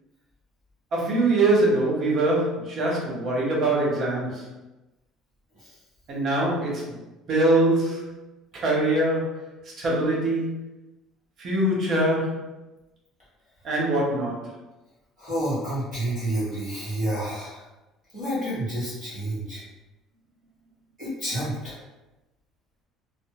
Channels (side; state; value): both; normal; correlation 0.45